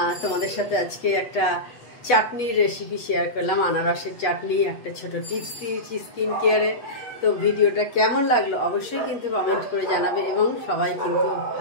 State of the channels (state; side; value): late; right; 8.1 ms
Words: তোমাদের সাথে আজকে একটা চাটনির রেসিপি শেয়ার করলাম, আনারসের চাটনি, একটা ছোট টিপস দিয়েছি স্কিন কেয়ারে। তো ভিডিওটা কেমন লাগলো অবশ্যই কিন্তু কমেন্ট করে জানাবে, এবং সবাই কিন্তু